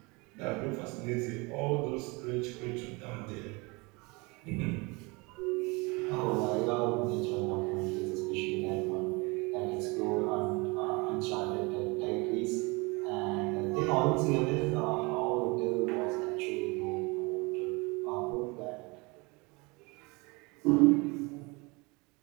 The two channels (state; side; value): quieter; left; 27.0 dB